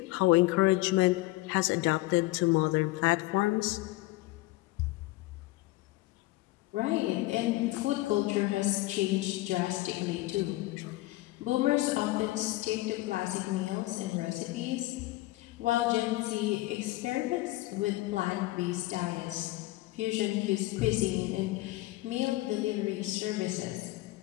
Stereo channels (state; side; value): quieter; right; 18.9 dB